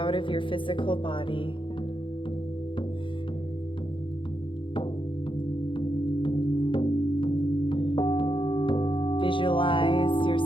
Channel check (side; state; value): right; late; 0.25 ms